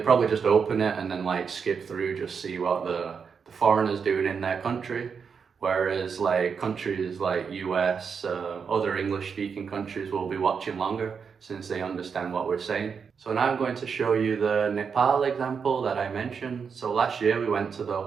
probably just open it and then like skip through, just see what the foreigners doing in their country. Whereas like countries like US, other English speaking countries will be watching longer since they understand what we're saying. So now I'm going to show you the Nepal example that I mentioned. So last year we went to the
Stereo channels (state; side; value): quieter; left; 6.2 dB